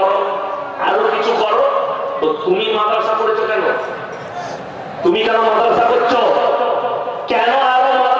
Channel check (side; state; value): both; identical; correlation 1.00